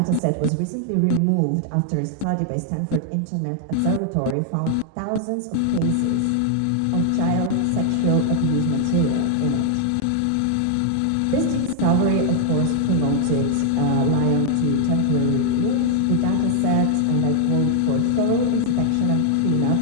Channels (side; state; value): both; different; correlation 0.00